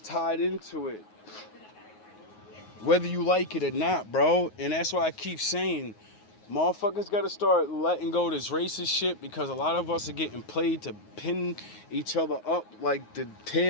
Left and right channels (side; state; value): right; late; 9.5 ms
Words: into it, whether you like it or not, bro. And that's why I keep saying, motherfuckers gotta start letting go of this racist shit, because a lot of us are getting played to pin each other up like the